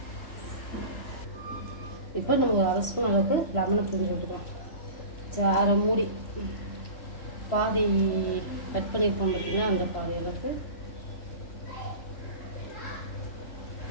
இப்போ நம்ம ஒரு 1/2 ஸ்பூன் அளவுக்கு லெமனை புரிஞ்சு விட்டுக்கலாம். அரை மூடி பாதி கட் பண்ணியிருக்கோம் பார்த்தீங்கன்னா, அந்த பாதி அளவுக்கு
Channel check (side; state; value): right; late; 3.0 ms